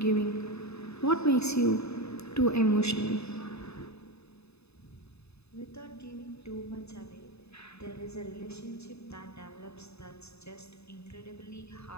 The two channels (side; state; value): right; late; 0.79 ms